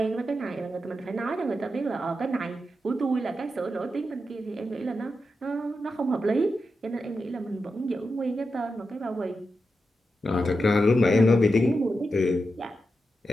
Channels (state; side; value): normal; both; correlation 0.88